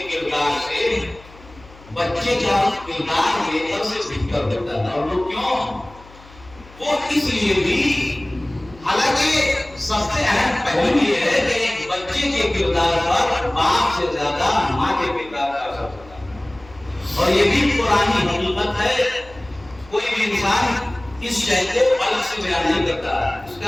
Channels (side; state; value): left; noise; hum, 22 dB below the sound